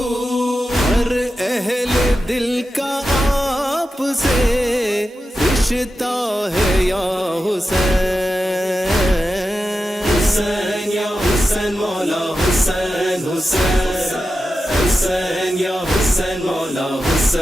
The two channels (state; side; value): normal; both; correlation 0.91